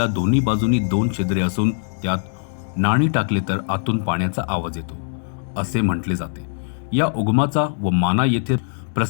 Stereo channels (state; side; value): silent; right; digital silence